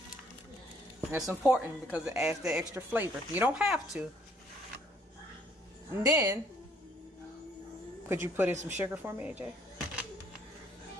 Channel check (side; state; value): both; normal; correlation 0.63